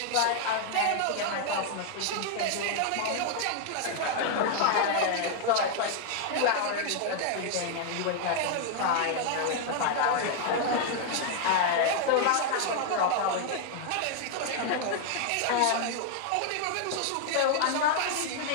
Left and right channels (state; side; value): different; both; correlation 0.00